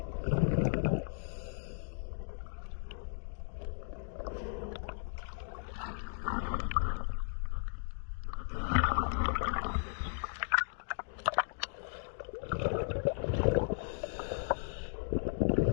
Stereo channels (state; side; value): silent; right; digital silence